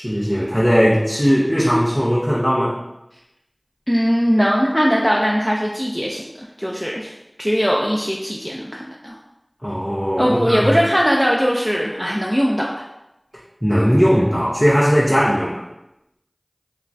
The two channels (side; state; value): both; identical; correlation 1.00